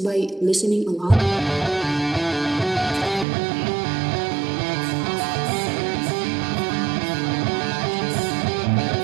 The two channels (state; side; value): drops out; left; at 3.2 s